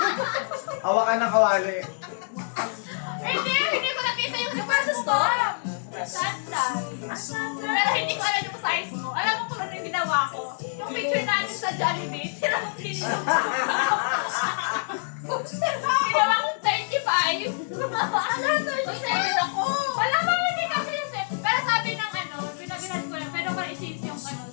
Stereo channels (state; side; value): silent; right; 61 dB below the other